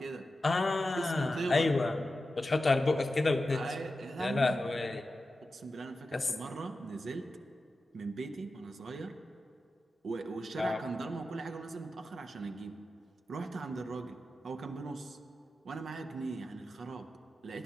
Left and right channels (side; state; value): both; normal; correlation 0.92